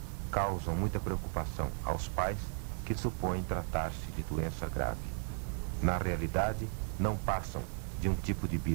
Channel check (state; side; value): quieter; left; 38.9 dB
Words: causam muita preocupação aos pais que supõem tratar-se de doença grave. Na realidade, não passam de um tipo de